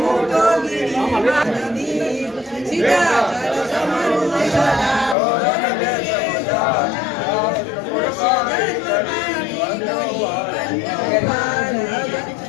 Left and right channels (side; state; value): right; drops out; at 5.2 s